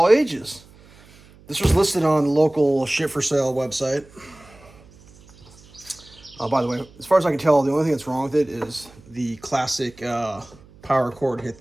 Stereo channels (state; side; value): noise; right; hum, 25 dB below the sound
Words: ages. This was listed on the local ship for sale website. By the way, as far as I can tell, the only thing that's wrong with it is the classic power cord hit